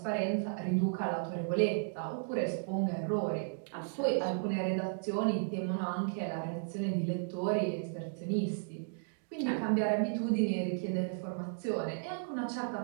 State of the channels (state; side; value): silent; left; digital silence